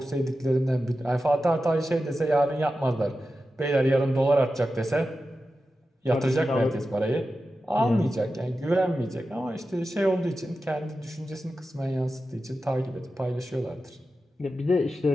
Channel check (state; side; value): normal; both; correlation 0.92